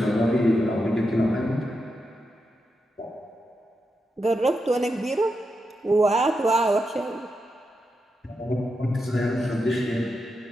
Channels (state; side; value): normal; both; correlation 0.86